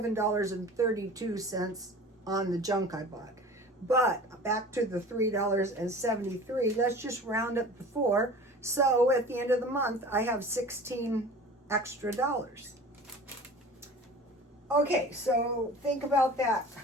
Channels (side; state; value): both; normal; correlation 0.40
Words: on the junk I bought. But back to the $3.73. Let's just round up the 4. So at the end of the month, I have 16 extra dollars. Okay, so think about that.